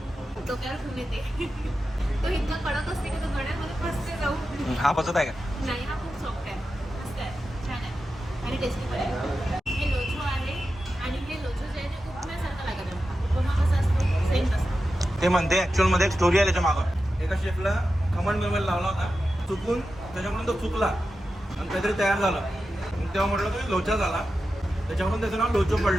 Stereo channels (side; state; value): both; normal; correlation 0.91